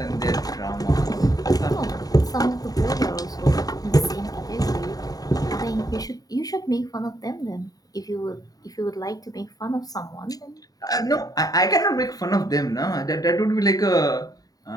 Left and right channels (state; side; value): late; right; 0.18 ms